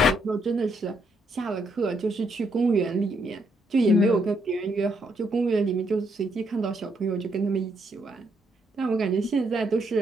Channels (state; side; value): normal; both; correlation 0.75